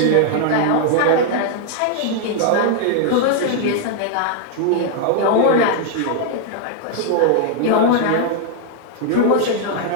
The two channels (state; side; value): different; both; correlation 0.00